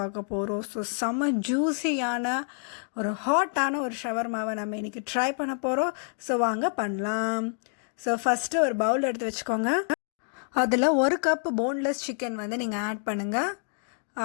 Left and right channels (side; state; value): right; silent; 60 dB below the other